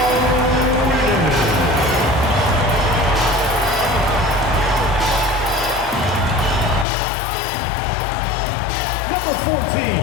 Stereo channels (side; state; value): right; drops out; at 6.9 s